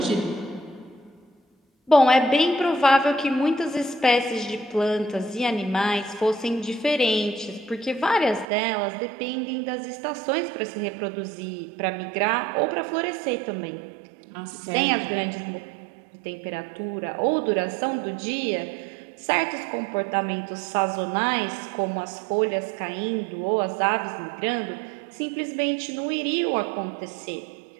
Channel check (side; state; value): left; drops out; at 8.5 s